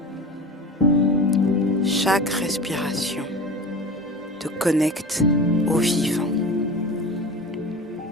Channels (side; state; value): both; normal; correlation 0.33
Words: Chaque respiration te connecte au vivant.